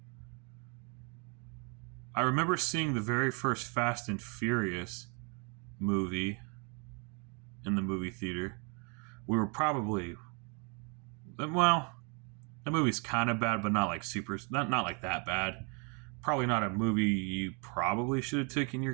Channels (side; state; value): left; quieter; 34.8 dB